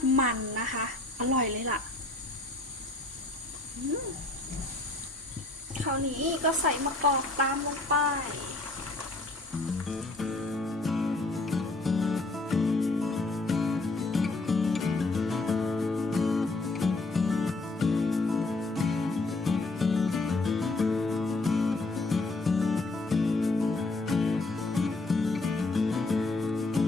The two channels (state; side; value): quieter; right; 3.1 dB